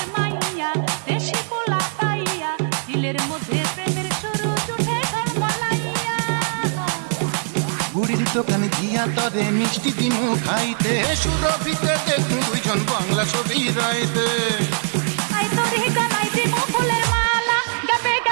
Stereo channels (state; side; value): silent; left; 65 dB below the other